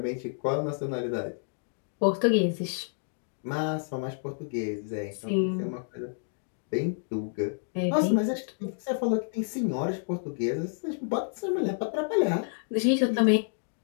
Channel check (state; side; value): silent; right; digital silence